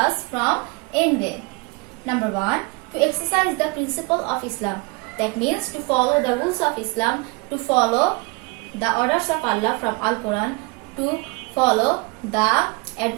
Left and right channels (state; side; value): quieter; left; 28.0 dB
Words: from envy? Number 1, to exercise the principle of Islam. That means to follow the rules of Islam, to follow the orders of Allah from Al-Quran, to follow the